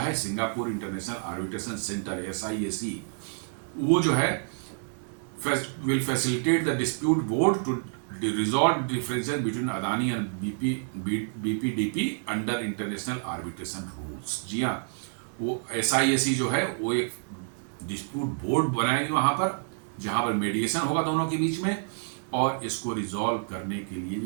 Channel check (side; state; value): left; silent; digital silence